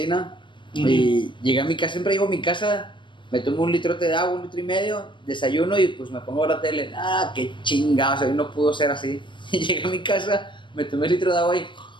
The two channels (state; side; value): late; right; 0.23 ms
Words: Y llegué a mi casa, siempre llego a mi casa, me tomo un litrote de agua, 1,5 litros, desayuno y pues me pongo a ver la tele. Qué chingados, hoy no pudo ser así. Y llegué a mi casa, me tomé el litro de agua y